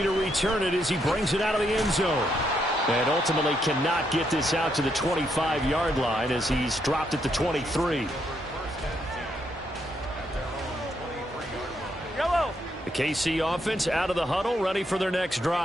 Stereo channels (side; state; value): both; normal; correlation 0.76